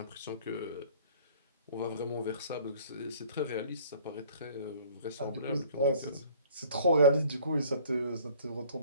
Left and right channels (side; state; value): both; inverted; correlation -0.52